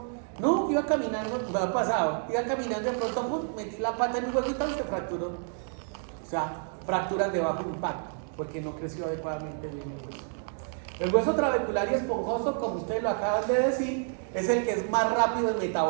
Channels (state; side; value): silent; left; 57 dB below the other